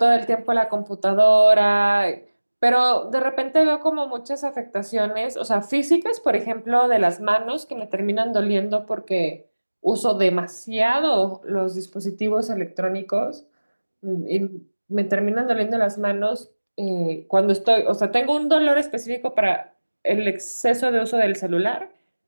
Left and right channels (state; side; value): inverted; both; correlation -1.00